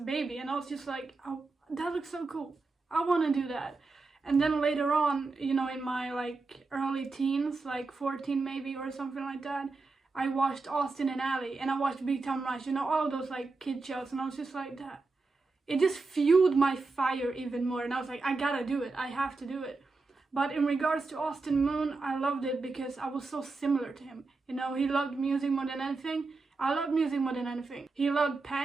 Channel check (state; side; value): quieter; left; 3.8 dB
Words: and I was just like, oh, that looks so cool, I want to do that. And then later on, you know, in my like early teens, like 14 maybe or something like that, I watched Austin and Ally and I watched Big Time Rush, you know, all those like kid shows, and I was just like, that it just fueled my fire even more, and I was like, I gotta do it, I have to do it. But in regards to Austin Moon, I loved it because I was so similar to him. You know, he loved music more than anything. I love music more than anything. He loved